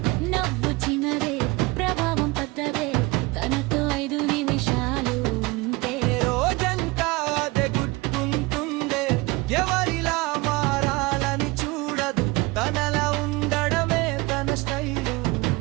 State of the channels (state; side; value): quieter; left; 23.3 dB